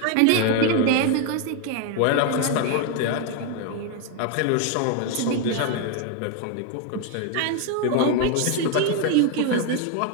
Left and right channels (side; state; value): both; different; correlation 0.01